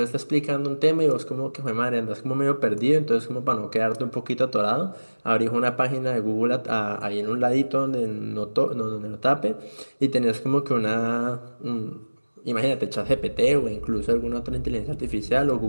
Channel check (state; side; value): inverted; both; correlation -1.00